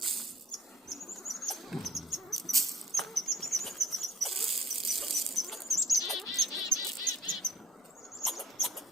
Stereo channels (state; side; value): normal; both; correlation 0.54